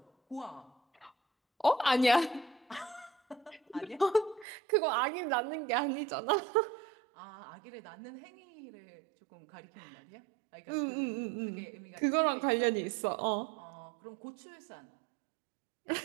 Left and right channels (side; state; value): left; drops out; at 4.5 s